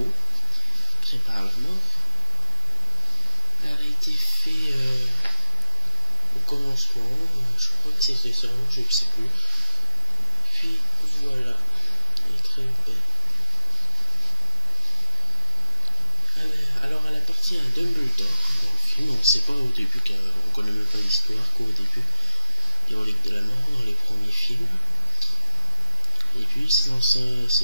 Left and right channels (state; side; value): inverted; both; correlation -0.51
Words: prépare la mort. Elle a été faite au commencement, je crois que c'était cerveau, je ne sais plus. Puis voilà, elle est très belle. Alors elle appartient à Dumbledore dans le film. On ne sait pas au début, on ne connaît même pas l'histoire qu'au début des reliques de la mort dans les premiers films. Et puis c'est dans le